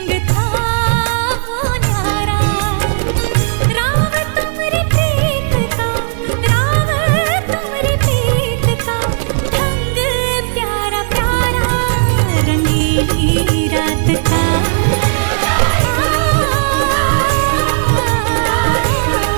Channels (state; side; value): silent; left; digital silence